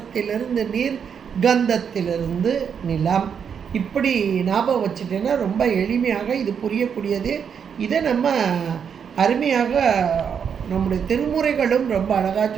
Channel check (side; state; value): left; quieter; 7.3 dB